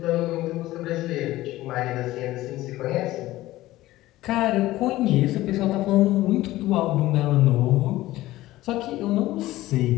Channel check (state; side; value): quieter; right; 16.5 dB